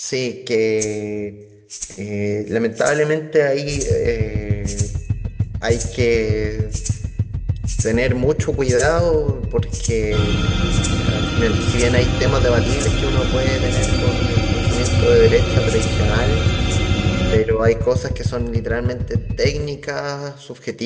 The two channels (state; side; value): identical; both; correlation 1.00